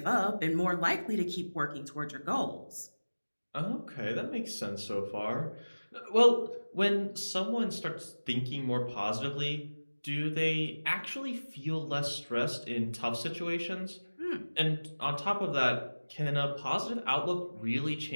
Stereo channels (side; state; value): both; inverted; correlation -1.00